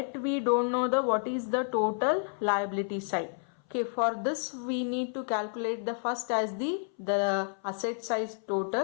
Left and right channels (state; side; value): silent; right; 58 dB below the other